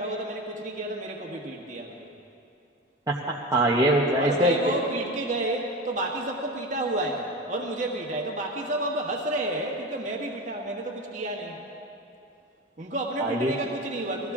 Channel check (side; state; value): both; normal; correlation 0.26